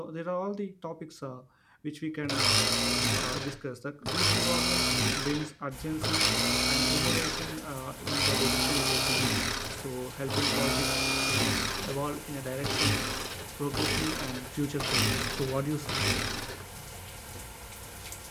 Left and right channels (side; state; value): both; identical; correlation 1.00